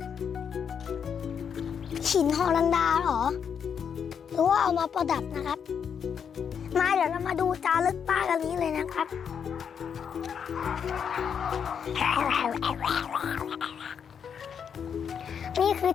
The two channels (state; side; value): quieter; right; 7.4 dB